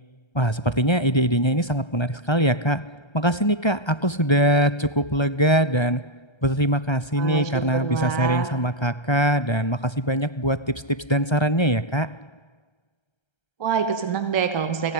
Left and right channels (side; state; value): right; late; 1.3 ms